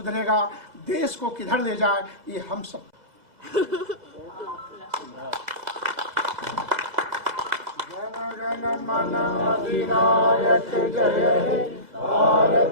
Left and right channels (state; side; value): late; left; 2.0 ms